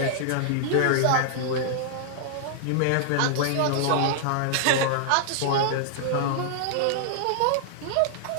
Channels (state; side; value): different; both; correlation -0.01